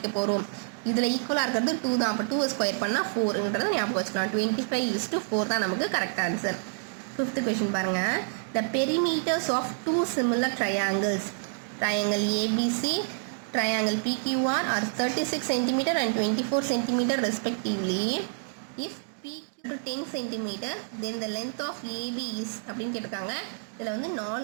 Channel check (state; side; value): silent; left; digital silence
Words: போகிறோம். இதில் ஈக்குவலாக இருக்கிறது 2 தான். அப்போ 2 ஸ்கொயர் பண்ணால் 4ன்றதை ஞாபகம் வச்சுக்கலாம். 25:4 தான் நமக்கு கரெக்ட் ஆன்சர். ஃபிஃப்த் கொஷின் பாருங்கள். The perimeters of 2 similar triangles, triangle ABC, triangle PQR are 36 cm and 24 cm respectively. If PQ to 10 cm, then the length of AB is அப்படின்னு கேட்டிருக்காங்க. இதில் வந்து